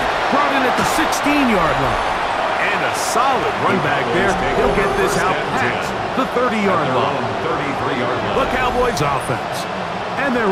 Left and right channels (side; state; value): both; identical; correlation 1.00